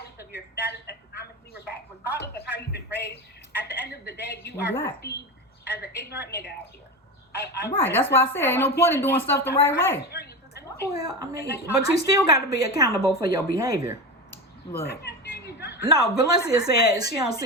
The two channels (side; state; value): both; normal; correlation 0.22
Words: of your status economically, regardless of how you've been raised, at the end of the day, you are perceived as an ignorant nigga out here. Right, that's why I said ain't no point in doing stuff the right way. Well, I mean, but you still got to be accountable for your behavior. Look. No, Valencia said she don't